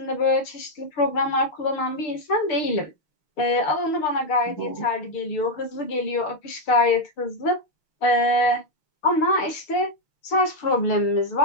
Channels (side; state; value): right; late; 6.7 ms